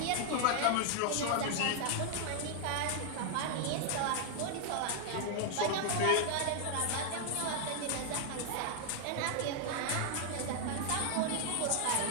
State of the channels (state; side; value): different; both; correlation 0.00